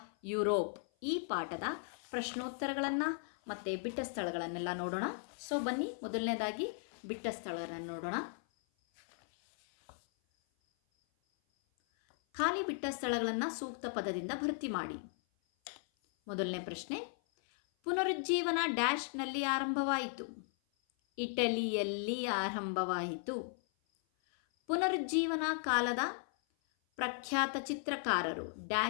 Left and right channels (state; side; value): silent; right; 53 dB below the other